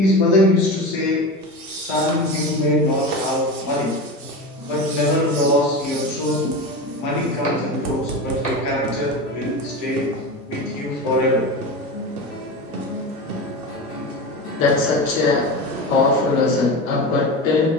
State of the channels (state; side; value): normal; both; correlation 0.25